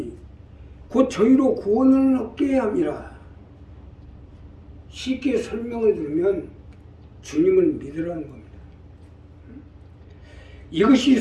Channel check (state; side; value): identical; both; correlation 1.00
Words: 곧 저희로 구원을 얻게 함이라. 쉽게 설명을 들으면 주님을 믿으라는 겁니다.